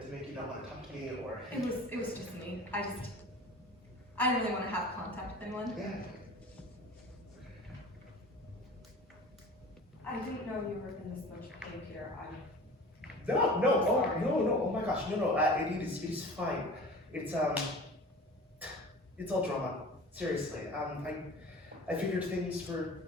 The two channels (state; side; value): normal; both; correlation 0.39